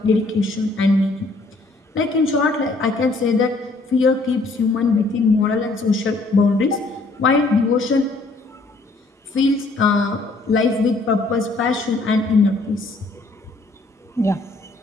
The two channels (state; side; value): quieter; right; 3.3 dB